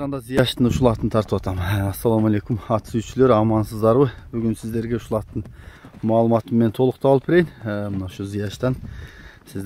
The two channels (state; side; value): identical; both; correlation 1.00